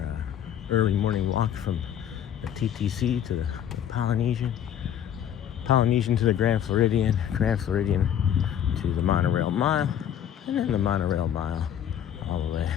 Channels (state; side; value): quieter; right; 9.8 dB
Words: early morning walk from the TTC to the Polynesian to the Grand Floridian to the monorail mile, and then the monorail mile all the way